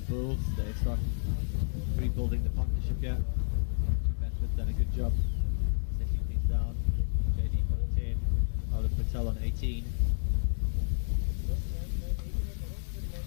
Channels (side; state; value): right; silent; digital silence